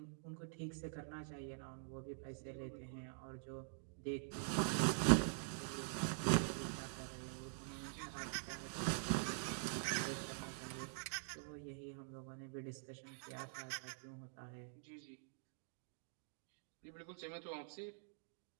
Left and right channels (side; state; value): left; silent; digital silence